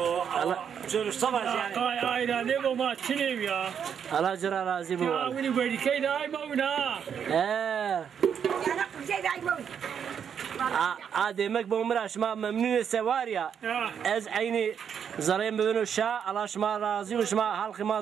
شو صباح يعني اي لا نبو ما تشنيم يا الله جرى رازي بو يا ويني ويني كيد اي مونا demek bu umra şma memnun sevar ya ez aynı zarayım bugün şa Allah şma razı ve şma halkı ma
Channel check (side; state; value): left; quieter; 7.8 dB